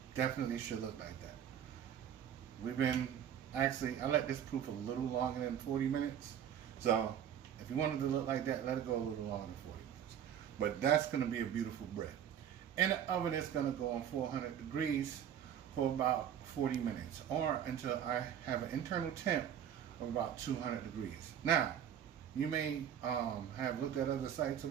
Definitely should look like that. I let this proof a little longer than 40 minutes. So if you wanted to look like that, let it go a little longer than 40 minutes. But that's going to be a beautiful bread. In the oven, it's going to go on 400 degrees for about 40 minutes, or until I have an internal temp of about 200 degrees. Now, you may have looked at other sites or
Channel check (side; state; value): left; quieter; 9.4 dB